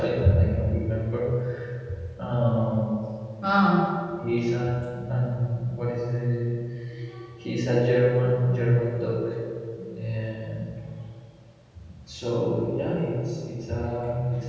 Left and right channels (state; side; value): identical; both; correlation 1.00